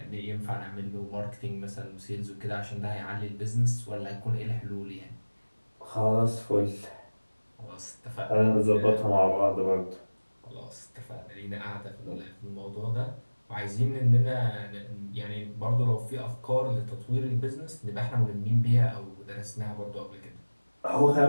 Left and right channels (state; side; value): inverted; both; correlation -1.00